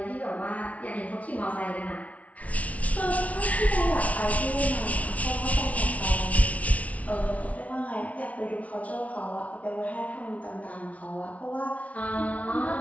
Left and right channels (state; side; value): late; right; 0.067 ms